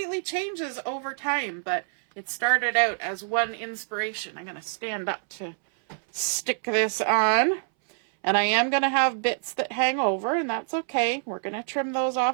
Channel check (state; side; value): silent; left; 61 dB below the other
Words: changes over time. But it started out as one inspiration. I'm going to stand up to stick this on, and I am going to have bits that hang over, and that's okay. We're going to trim those